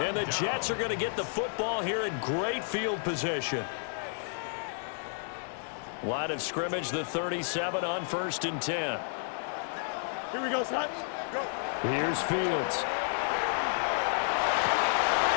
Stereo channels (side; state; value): right; silent; digital silence